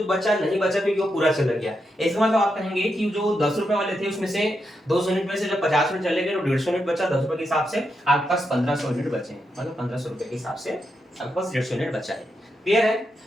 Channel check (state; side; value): normal; both; correlation 0.84